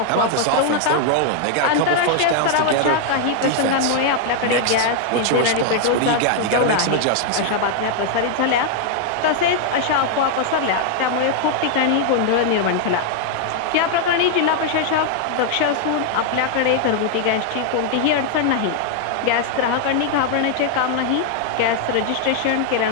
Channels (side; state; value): both; different; correlation 0.00